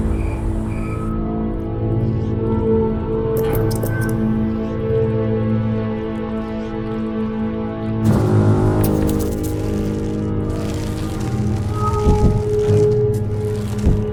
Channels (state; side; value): identical; both; correlation 1.00